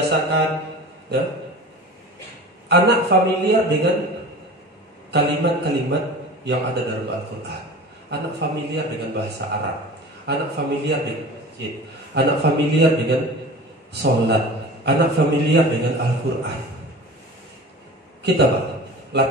ya. Anak familiar dengan kalimat-kalimat yang ada dalam Al-Quran. Anak familiar dengan bahasa Arab. Anak familiar dengan masjid. Anak familiar dengan sholat. Anak familiar dengan Al-Quran. Kita Pak,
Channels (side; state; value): both; normal; correlation 0.37